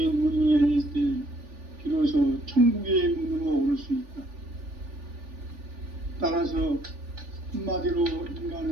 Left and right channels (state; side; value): late; left; 3.4 ms